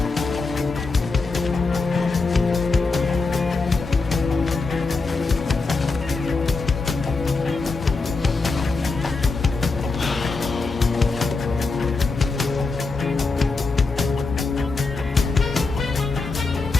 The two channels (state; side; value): quieter; right; 4.0 dB